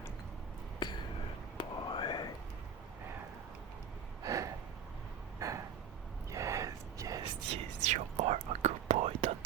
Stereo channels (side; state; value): left; quieter; 7.3 dB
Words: Good boy. Yes, you are a good boy. Don't